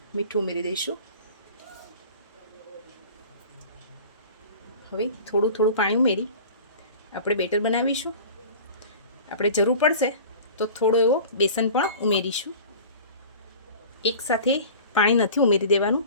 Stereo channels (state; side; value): inverted; both; correlation -0.40